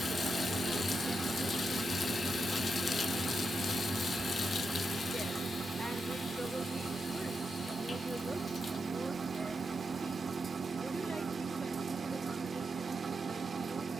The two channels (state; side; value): normal; both; correlation 0.85